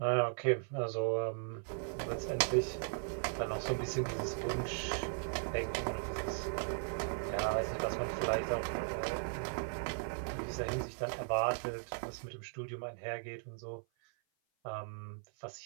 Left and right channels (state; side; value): silent; left; 53 dB below the other